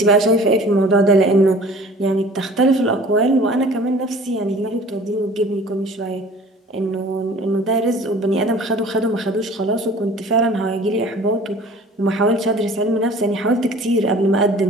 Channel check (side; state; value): both; normal; correlation 0.47